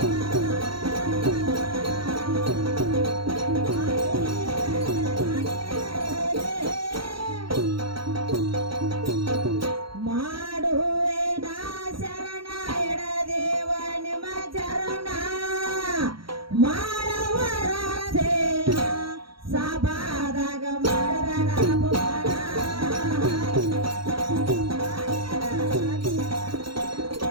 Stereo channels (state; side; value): late; left; 0.74 ms